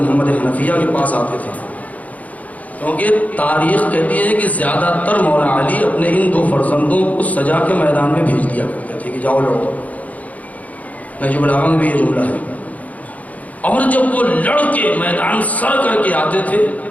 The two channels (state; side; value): late; right; 0.073 ms